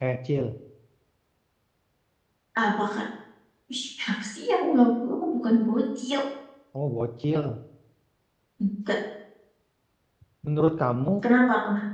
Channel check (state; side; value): identical; both; correlation 1.00